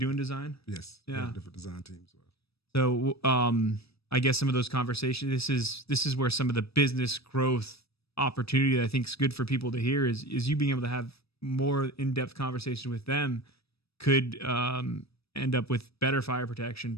design? Yes. Yeah. Different design teams. So, I guess some of those conversations, this is where some of the business growth opportunity that I think is good for people to hear is you being able to have more in-depth conversation with them could end up with better fire protection,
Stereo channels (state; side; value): late; right; 0.78 ms